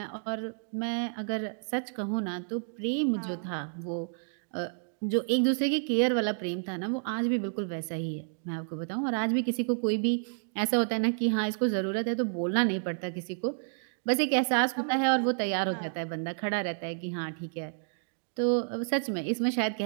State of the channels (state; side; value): silent; left; digital silence